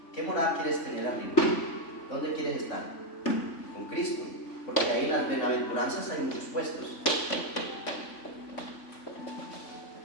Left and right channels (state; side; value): late; right; 3.5 ms